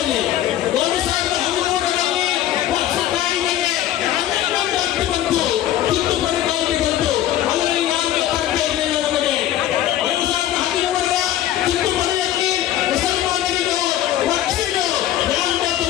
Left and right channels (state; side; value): quieter; right; 12.5 dB